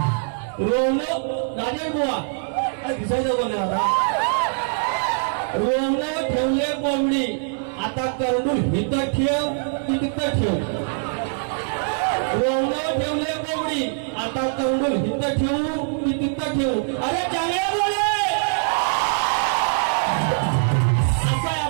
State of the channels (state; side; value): silent; left; 61 dB below the other